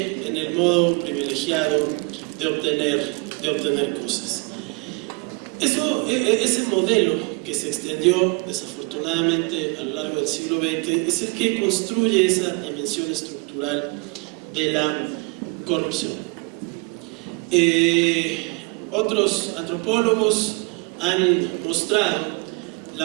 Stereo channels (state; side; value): quieter; left; 29.9 dB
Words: en el modo privilegiado de obtener cosas. Ese modelo que se extendió desafortunadamente a lo largo del siglo XX es el que construye esa dimensión estructural de la corrupción. Otros antropólogos han mostrado